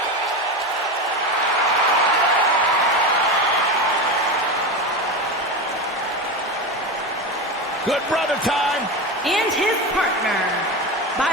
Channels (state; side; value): normal; both; correlation 0.21